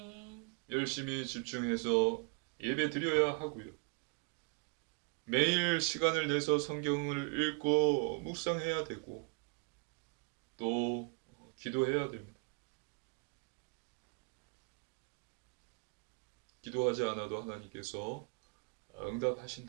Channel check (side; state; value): left; quieter; 37.0 dB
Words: 열심히 집중해서 예배 드려야 하고요. 매일 시간을 내서 성경을 읽고 묵상해야 되고 또 기도해야 됩니다. 기도하지 않아도 하나님께서